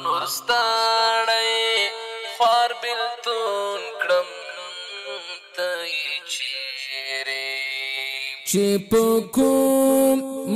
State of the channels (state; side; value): identical; both; correlation 1.00